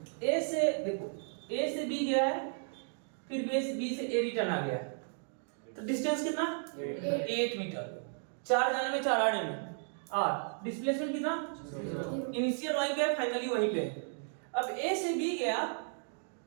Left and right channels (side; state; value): left; silent; 55 dB below the other